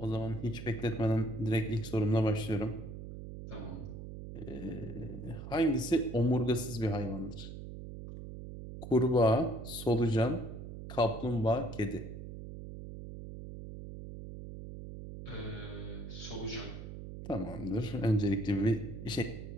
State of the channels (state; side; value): noise; right; hum, 10 dB below the sound